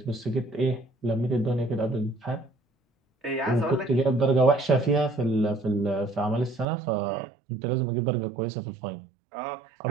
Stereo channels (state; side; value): drops out; left; at 6.7 s